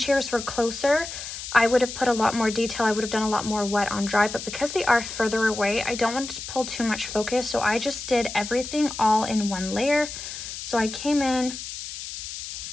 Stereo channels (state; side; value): noise; left; hiss, 9 dB below the sound